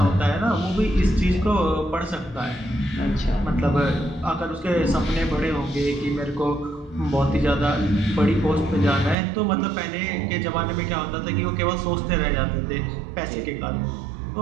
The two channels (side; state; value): left; drops out; at 9.2 s